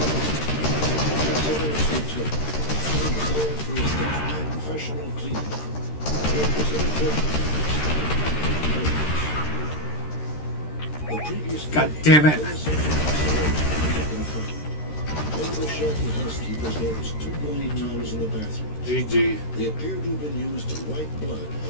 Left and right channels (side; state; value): right; late; 13 ms